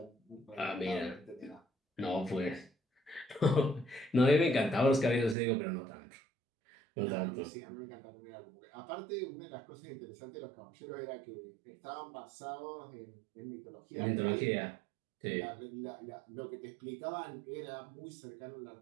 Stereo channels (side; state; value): left; drops out; at 5.4 s